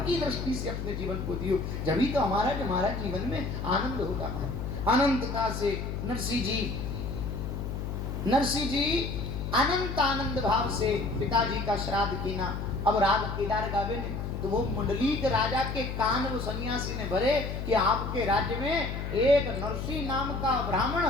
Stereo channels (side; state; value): left; noise; hum, 4 dB below the sound